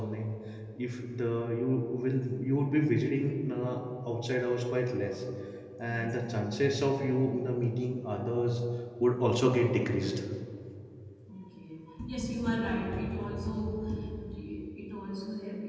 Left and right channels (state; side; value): identical; both; correlation 1.00